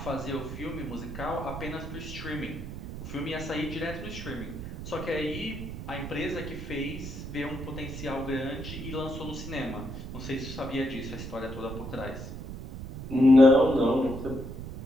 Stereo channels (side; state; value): right; noise; rumble, 8 dB below the sound